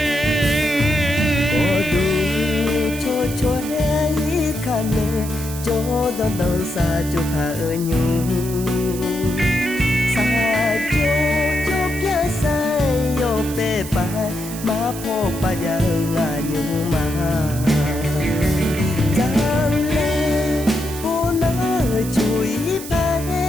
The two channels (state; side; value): noise; right; hiss, 12 dB below the sound